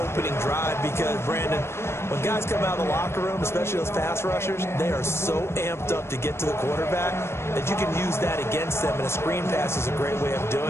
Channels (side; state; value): right; late; 0.12 ms